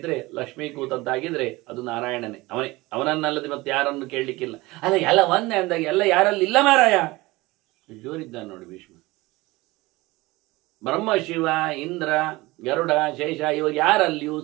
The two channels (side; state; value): left; quieter; 21.0 dB